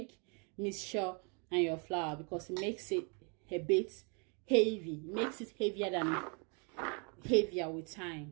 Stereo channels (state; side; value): quieter; left; 35.9 dB